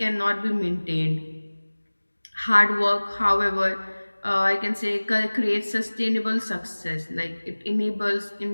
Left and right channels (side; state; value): both; inverted; correlation -1.00